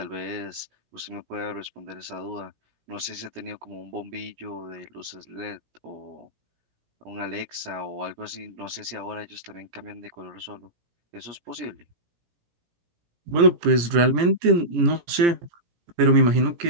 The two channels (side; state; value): left; late; 17 ms